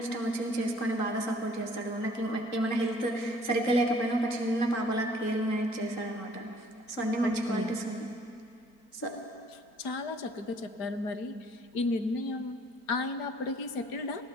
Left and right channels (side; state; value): right; late; 4.4 ms